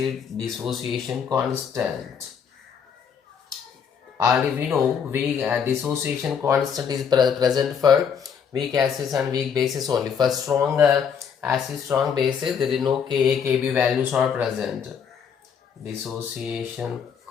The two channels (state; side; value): quieter; right; 7.1 dB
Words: dissociation constant. Already we know weak dissociation constant is present for weak acids and weak bases only. For strong acid, strong bases, there is no Ka, Kb values are present. Dissociation